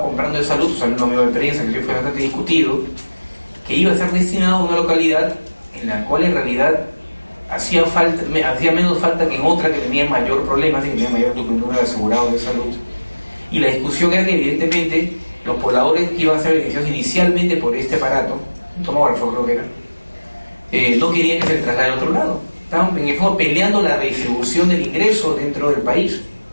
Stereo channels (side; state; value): both; inverted; correlation -1.00